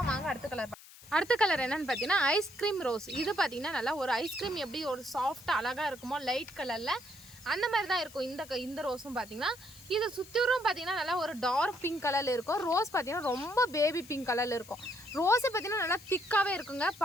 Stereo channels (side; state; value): left; noise; hiss, 20 dB below the sound